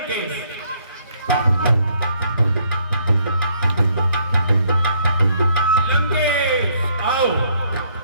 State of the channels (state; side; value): inverted; both; correlation -0.68